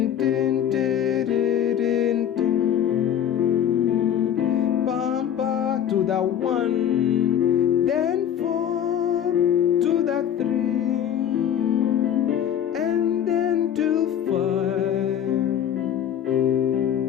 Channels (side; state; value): right; quieter; 9.6 dB